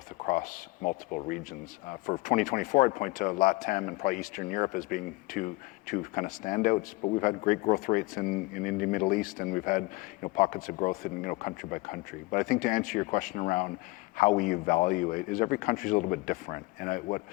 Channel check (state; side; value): quieter; right; 22.7 dB